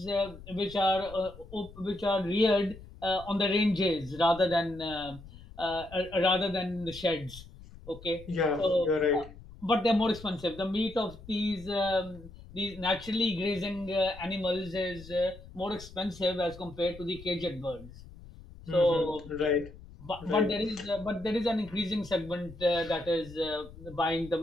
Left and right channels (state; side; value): noise; left; rumble, 18 dB below the sound